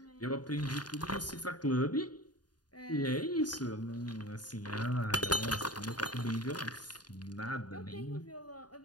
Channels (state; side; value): late; right; 0.70 ms